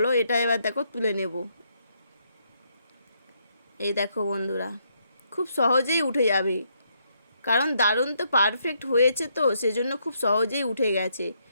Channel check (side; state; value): both; inverted; correlation -0.74